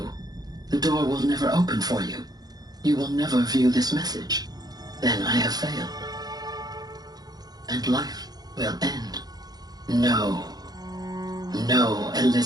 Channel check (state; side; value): late; left; 0.19 ms